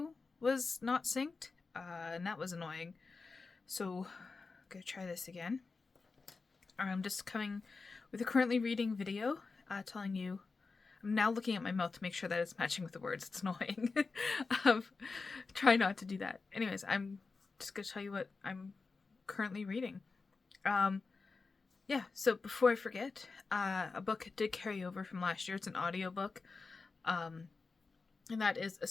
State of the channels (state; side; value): quieter; right; 4.2 dB